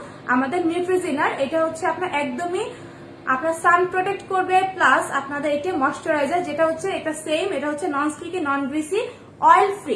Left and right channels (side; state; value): both; identical; correlation 1.00